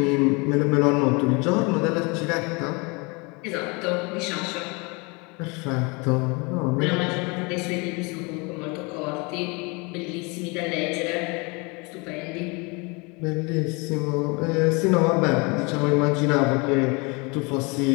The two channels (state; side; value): quieter; right; 29.0 dB